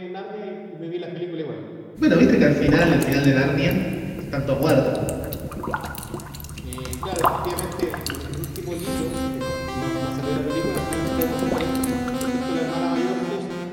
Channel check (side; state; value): both; identical; correlation 1.00